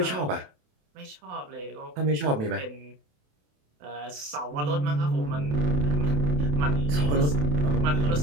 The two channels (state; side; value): late; left; 28 ms